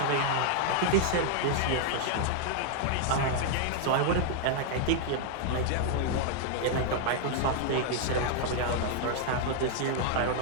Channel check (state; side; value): different; both; correlation 0.00